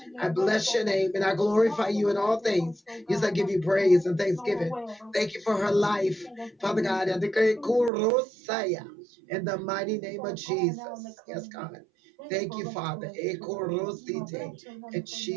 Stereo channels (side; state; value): left; drops out; at 7.9 s